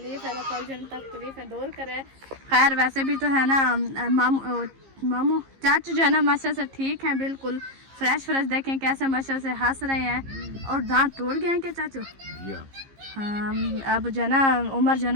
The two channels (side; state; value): left; late; 15 ms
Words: है अल्लाह पाक जो तकलीफ़ें दूर करे। खैर वैसे भी तो है ना मामू चाचू जो है ना माशाल्लाह से ठीक हैं, बिल्कुल फ्रेश देखें कैसे माशाल्लाह से हंस रहे हैं। और दांत टूट गए हैं क्या चाचू? हाँ अब जो है ना उम्र जो है